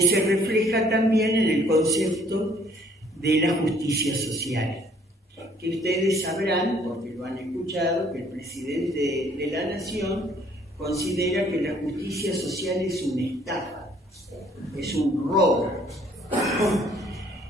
se refleja también en el concepto de la justicia social, que ustedes sabrán, porque lo han escuchado, que el presidente de la Nación considera que la justicia social es una estafa, es un robo.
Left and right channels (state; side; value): normal; both; correlation 0.61